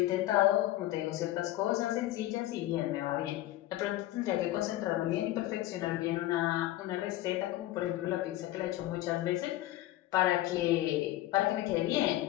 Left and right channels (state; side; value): quieter; right; 15.4 dB